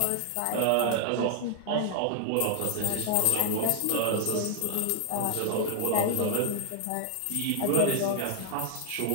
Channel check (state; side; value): different; both; correlation 0.00